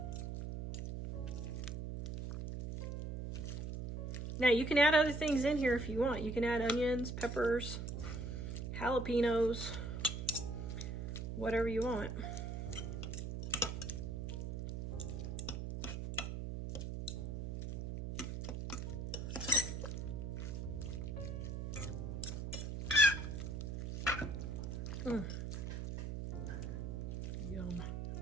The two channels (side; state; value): right; noise; hum, 4 dB below the sound